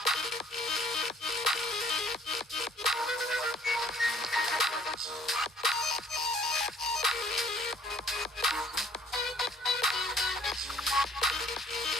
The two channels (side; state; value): both; normal; correlation 0.58